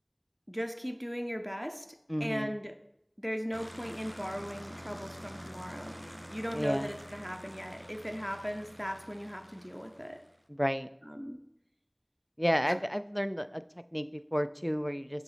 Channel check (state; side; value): identical; both; correlation 1.00